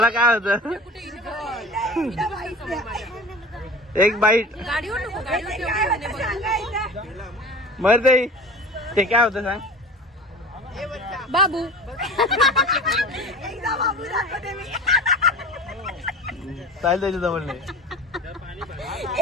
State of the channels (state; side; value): normal; both; correlation 0.36